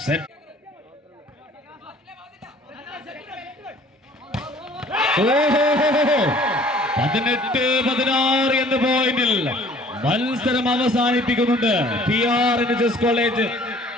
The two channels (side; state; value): both; normal; correlation 0.53